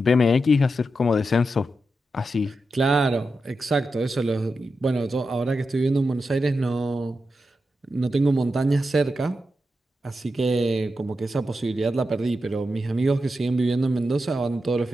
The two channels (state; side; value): normal; both; correlation 0.88